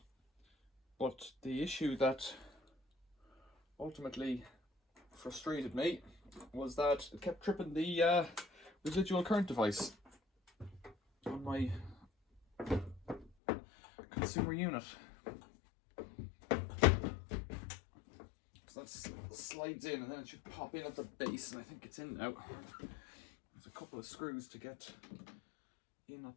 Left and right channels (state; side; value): drops out; right; at 13.3 s